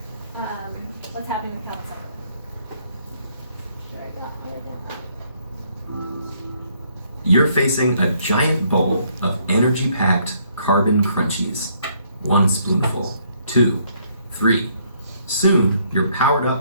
what's happening with health cycle. You're facing a giant bowl of energy-packed carbon crunchies. 1 spoonful, 2, 3. Soon, you're powered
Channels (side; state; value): both; inverted; correlation -0.68